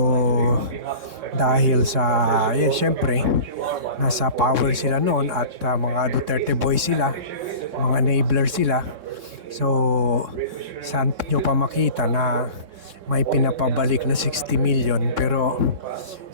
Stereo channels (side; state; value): left; late; 3.6 ms